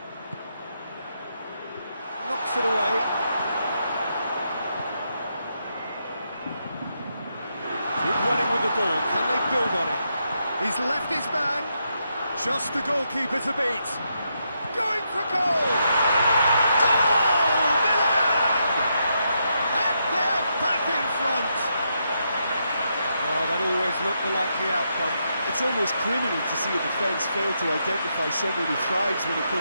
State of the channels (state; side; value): inverted; both; correlation -0.81